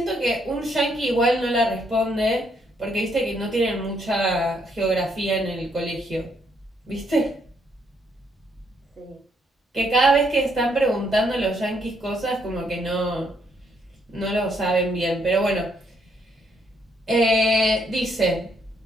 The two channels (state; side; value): normal; both; correlation 0.72